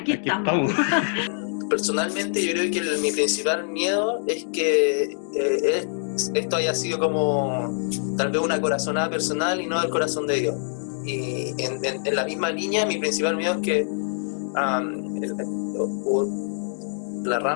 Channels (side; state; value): right; silent; digital silence